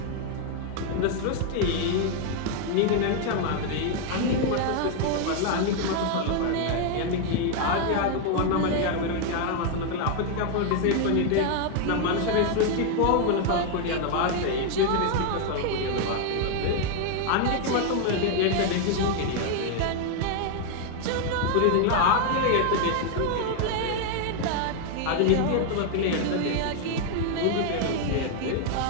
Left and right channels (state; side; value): different; both; correlation 0.00